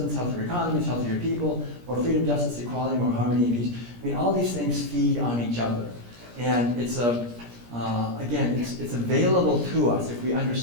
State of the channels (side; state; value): left; late; 17 ms